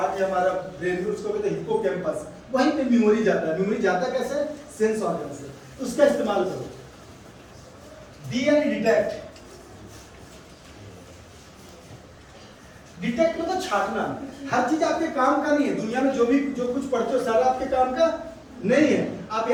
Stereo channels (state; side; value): identical; both; correlation 1.00